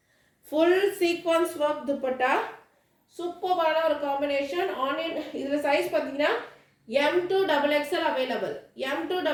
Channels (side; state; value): both; identical; correlation 1.00